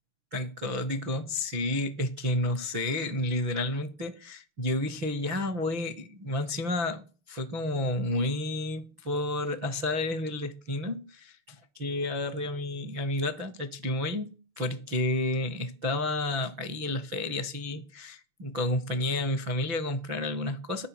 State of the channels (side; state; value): left; late; 6.0 ms